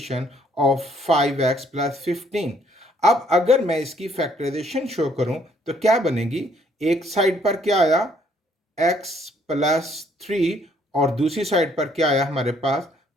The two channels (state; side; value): normal; both; correlation 0.65